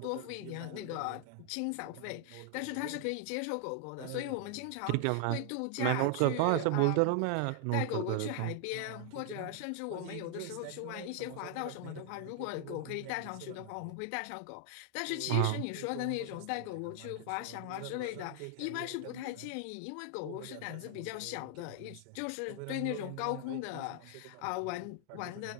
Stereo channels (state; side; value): different; both; correlation 0.00